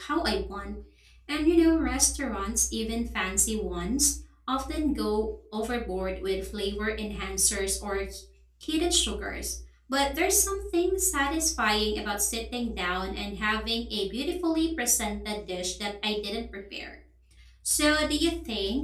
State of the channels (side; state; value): both; identical; correlation 1.00